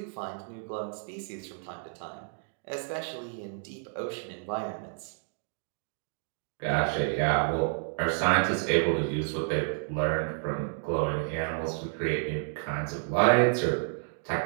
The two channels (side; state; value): left; silent; digital silence